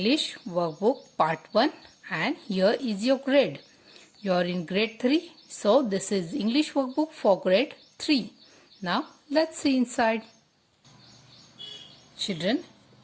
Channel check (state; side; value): identical; both; correlation 1.00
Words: workbook part 1 and here is your grade. You are in grade 3, so this is English workbook for grade 3. Now let's see inside. Children,